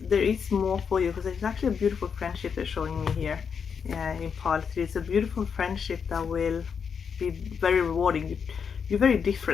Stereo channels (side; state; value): right; quieter; 6.5 dB